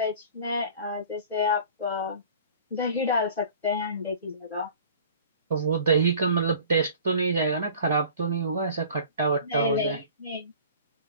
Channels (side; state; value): both; inverted; correlation -0.45